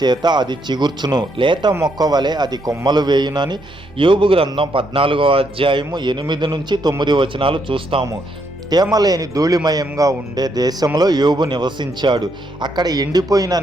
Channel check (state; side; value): normal; both; correlation 0.75